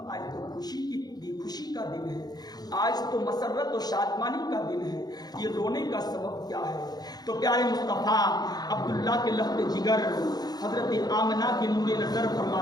تو خوشی کا دن ہے، آج تو مسرت و شادمانی کا دن ہے، یہ رونے کا سبب کیا ہے؟ تو پیارے مصطفیٰ عبداللہ کے لفظ جگر حضرت آمنہ کے نور نظر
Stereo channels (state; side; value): late; right; 0.19 ms